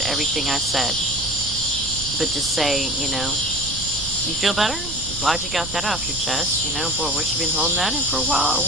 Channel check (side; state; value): right; noise; rumble, 12 dB below the sound